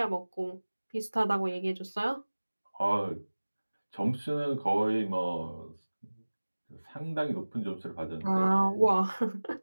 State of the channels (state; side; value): inverted; both; correlation -1.00